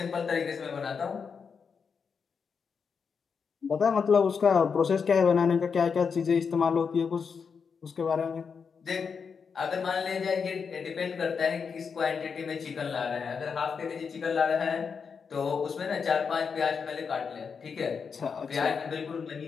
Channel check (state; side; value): quieter; right; 5.9 dB